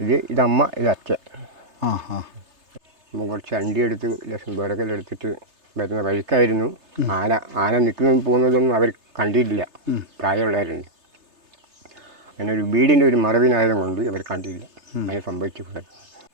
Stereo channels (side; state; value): left; late; 3.3 ms